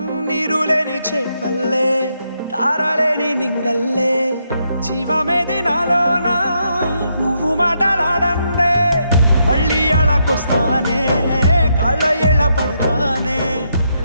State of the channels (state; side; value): inverted; both; correlation -0.79